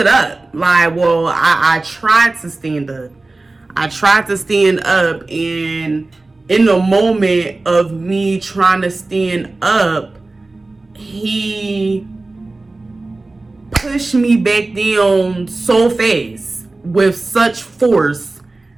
up. Like, well, I tried to stand up. And in the moment of me trying to stand up, he pushed me back down so fast with such force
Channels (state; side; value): quieter; left; 3.2 dB